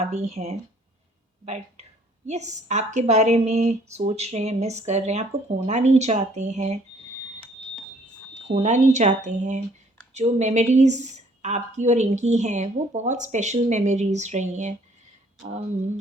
भी हैं, बट यस आपके बारे में सोच रहे हैं, मिस कर रहे हैं, आपको खोना नहीं चाहते हैं, खोना नहीं चाहते हैं। जो मेमोरीज़ आपकी और इनकी हैं वो बहुत स्पेशल मेमोरीज रही हैं।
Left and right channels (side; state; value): both; normal; correlation 0.61